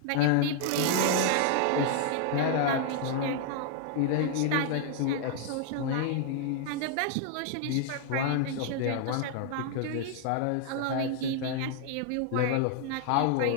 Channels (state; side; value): different; both; correlation 0.00